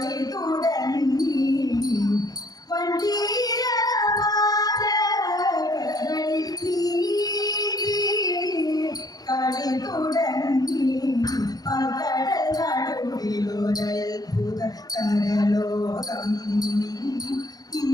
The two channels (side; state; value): right; late; 0.19 ms